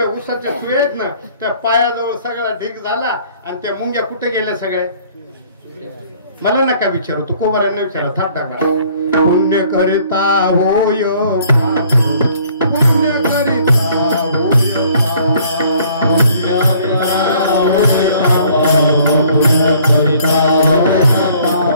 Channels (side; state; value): both; inverted; correlation -0.58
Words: ऊसाच्या चुया आहेत ना त्या पायाजवळ सगळा ढीक झाला आणि त्या मुंग्या कुठे गेल्या सगळ्या मला नका विचारू तू कोबरांना विचारा थाट टाका पुण्य करिता होय पुण्य करिता